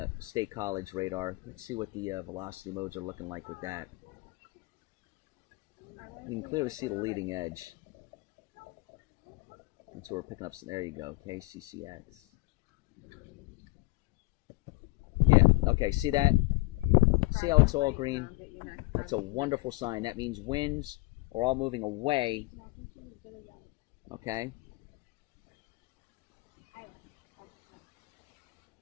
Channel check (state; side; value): quieter; right; 23.0 dB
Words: State College radar. Let's see what the velocity modes are looking like with that. You can clearly see the leading edge. That's where we're picking up. There you go, KCCX. Yeah, okay, see that? See how it's all green? That's a wonderful sign. That means winds are all moving away. Okay?